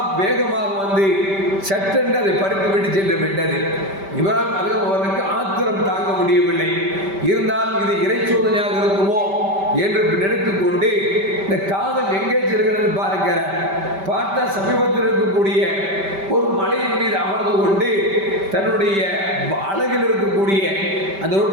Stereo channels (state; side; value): late; left; 5.1 ms